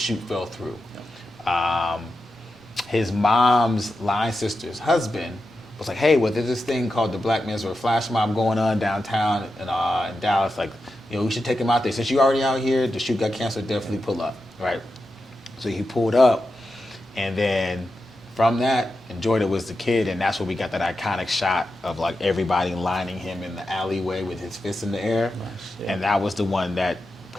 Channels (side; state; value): both; normal; correlation 0.90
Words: fell through. Yeah. His mom's line sister's husband was like, hey, well, there's this thing called the Black Menswear flash mob going on downtown in Dallas. Like, you know, we should take him out there. Since you're already out here, the shoot got canceled, definitely pull up, right? So he pulled up, and then from that, and Jordan was the kid, and that's where we got that iconic shot of like everybody lining him in the alleyway with his fists in the air. Nice, yeah. And that was the one that